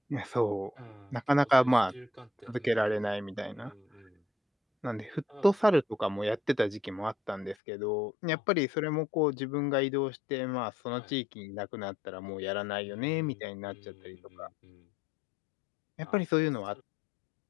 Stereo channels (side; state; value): right; drops out; at 7.6 s